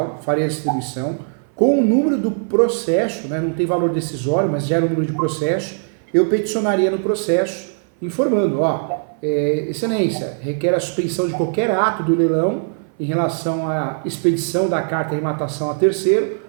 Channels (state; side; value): silent; left; 56 dB below the other